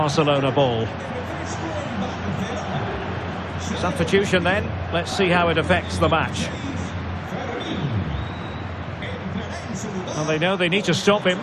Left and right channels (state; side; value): identical; both; correlation 1.00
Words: ball. Substitution then. Let's see how it affects the match. Well, they know they need to stop him.